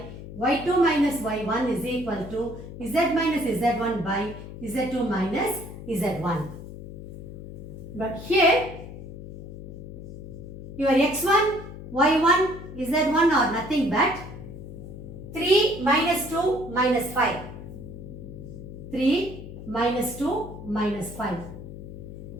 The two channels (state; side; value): noise; left; hum, 12 dB below the sound